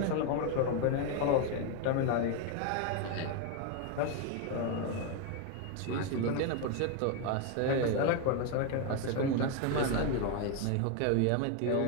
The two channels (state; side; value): different; both; correlation 0.01